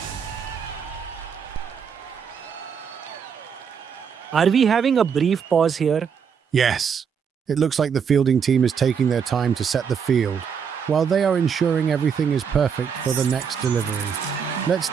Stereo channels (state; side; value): quieter; left; 6.9 dB